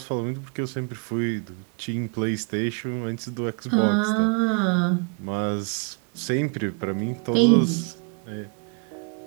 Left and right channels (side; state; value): left; quieter; 34.0 dB